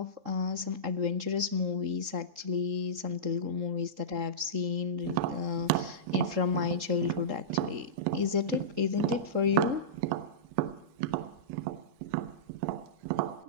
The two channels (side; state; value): left; late; 3.7 ms